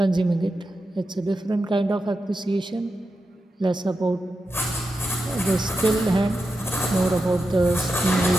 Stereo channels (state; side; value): normal; both; correlation 0.89